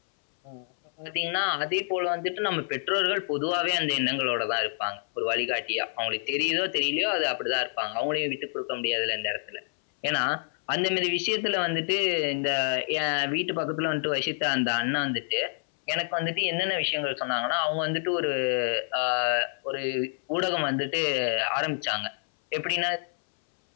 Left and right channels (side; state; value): right; silent; 60 dB below the other